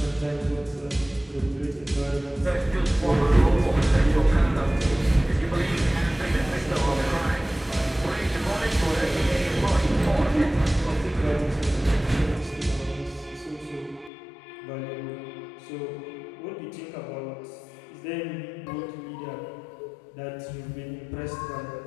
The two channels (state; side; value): drops out; right; at 14.1 s